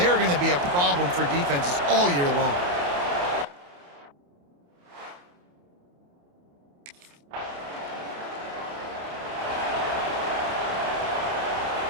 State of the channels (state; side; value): late; left; 28 ms